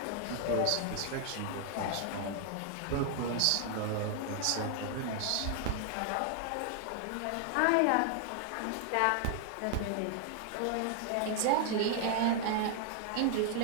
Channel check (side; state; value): both; different; correlation 0.00